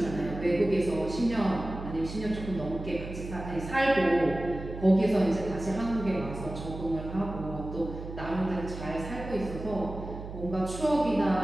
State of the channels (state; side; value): noise; right; hum, 10 dB below the sound